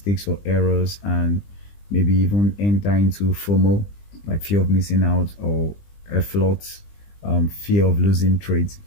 or errors and maybe even enter into FOMO, like fear of missing out, or a float, fear of losing trades,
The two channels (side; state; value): right; late; 20 ms